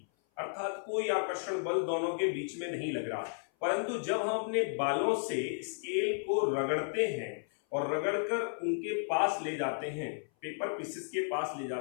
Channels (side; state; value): right; silent; 55 dB below the other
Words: अर्थात कोई आकर्षण बल दोनों के बीच में नहीं लग रहा, परंतु जब हम अपने बालों से स्केल को रगड़ते हैं और रगड़कर उनके पास ले जाते हैं, पेपर पीसेस के पास ले